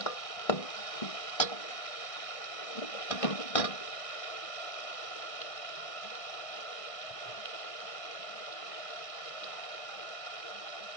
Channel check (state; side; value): late; right; 1.6 ms